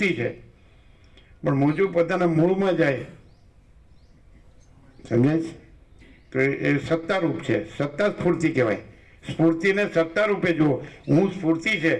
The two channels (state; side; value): identical; both; correlation 1.00